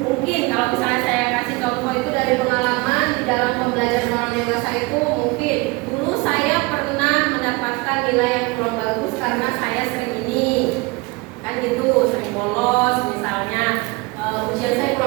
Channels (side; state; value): left; quieter; 25.1 dB